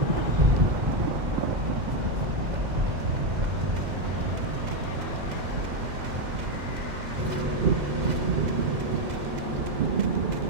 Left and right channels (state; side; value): late; left; 2.0 ms